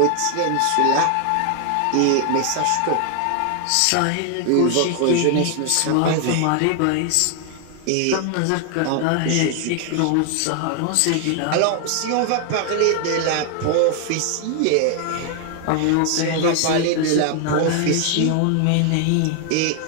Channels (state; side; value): different; both; correlation 0.00